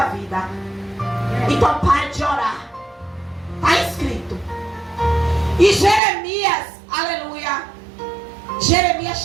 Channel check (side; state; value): left; drops out; at 6.0 s